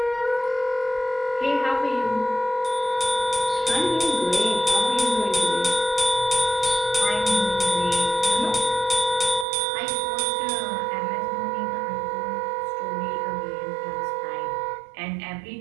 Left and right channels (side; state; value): left; drops out; at 9.5 s